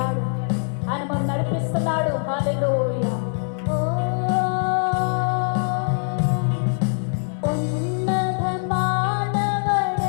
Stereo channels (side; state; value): right; silent; 63 dB below the other